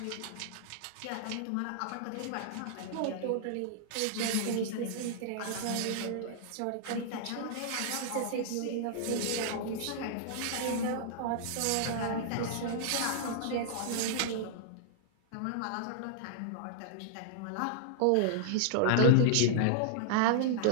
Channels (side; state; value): both; different; correlation -0.01